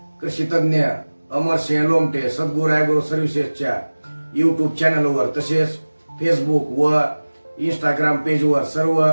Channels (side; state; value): both; inverted; correlation -1.00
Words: कृषी तज्ञ अमरसिंह लोमटे सद्गुरू ॲग्रो सर्व्हिसेसच्या युट्यूब चॅनलवर तसेच फेसबुक व इंस्टाग्राम पेजवर सर्व